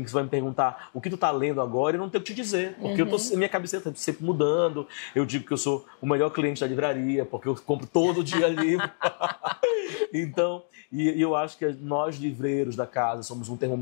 que você vai me perguntar o que tu tá lendo agora e eu não tenho o que te dizer. Porque minha cabeça está sempre mudando. Eu digo que eu sou o melhor cliente da livraria, porque eu compro todo dia livro. Então, e eu acho que nós livreiros da casa somos um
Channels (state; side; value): silent; right; digital silence